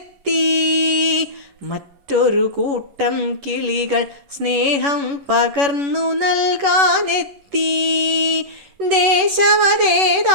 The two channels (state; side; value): late; left; 11 ms